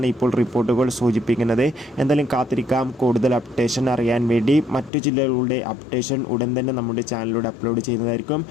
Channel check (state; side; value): drops out; right; at 4.9 s